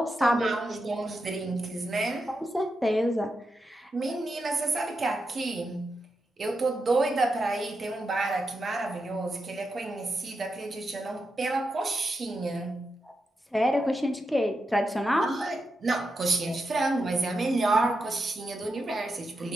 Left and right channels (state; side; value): normal; both; correlation 0.87